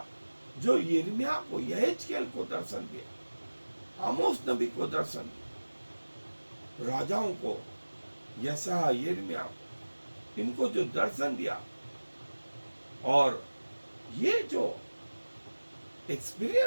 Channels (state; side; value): inverted; both; correlation -1.00